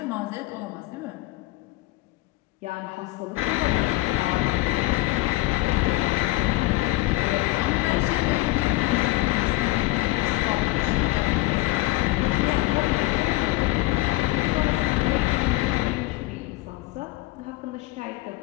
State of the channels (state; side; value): quieter; right; 19.0 dB